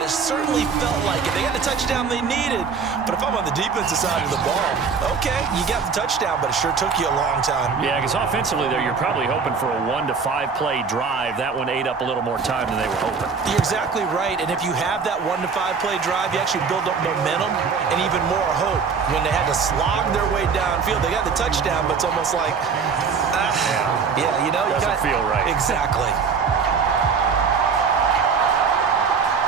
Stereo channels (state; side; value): quieter; left; 5.6 dB